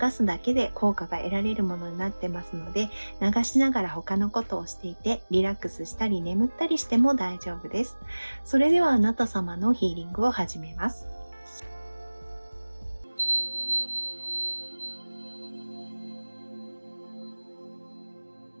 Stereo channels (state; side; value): inverted; both; correlation -1.00